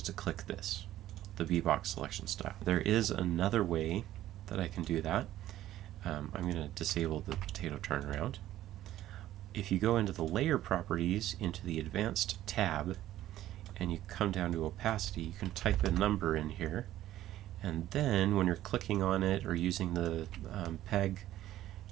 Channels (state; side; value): quieter; left; 13.6 dB